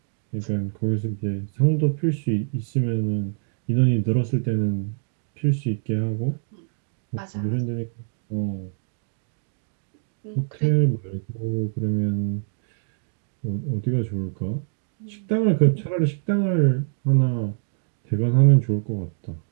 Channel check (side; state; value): left; silent; digital silence